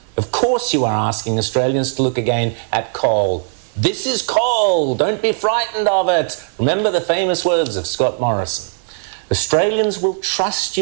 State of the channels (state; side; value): silent; left; 67 dB below the other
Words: Of course you are asking Australians to look again at coal. This is coal. Don't be frightened of it. Remember the famous words of Scott Morrison. Australians will trust